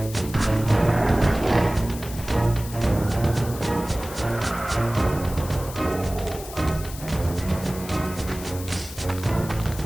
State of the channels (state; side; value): noise; left; hiss, 14 dB below the sound